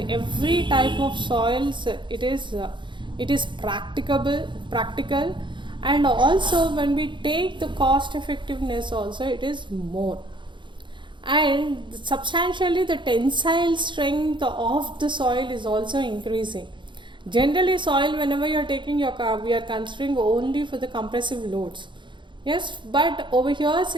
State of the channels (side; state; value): left; late; 0.23 ms